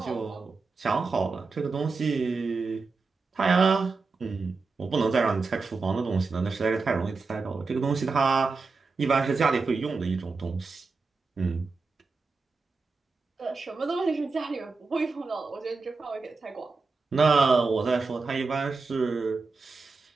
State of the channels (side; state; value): left; quieter; 4.2 dB